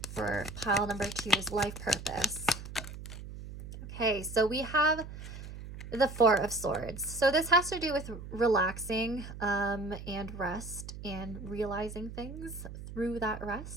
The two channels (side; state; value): right; noise; hum, 11 dB below the sound